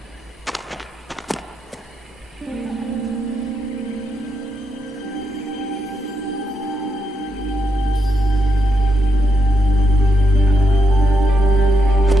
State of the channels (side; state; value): both; normal; correlation 0.81